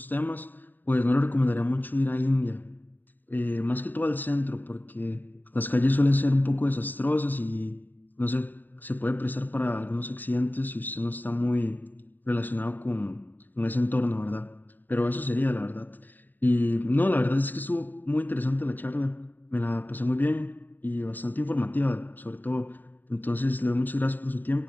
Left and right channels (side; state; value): right; late; 0.089 ms